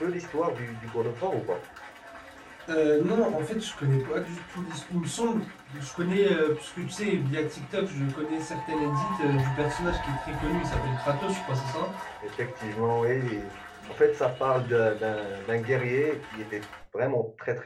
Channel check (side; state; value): both; identical; correlation 1.00